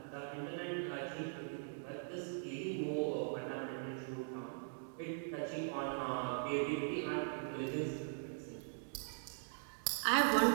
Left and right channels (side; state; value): left; silent; digital silence